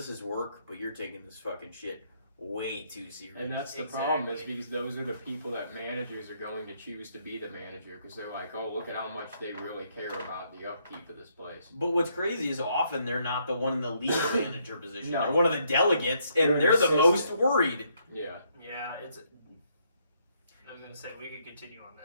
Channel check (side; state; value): both; inverted; correlation -0.72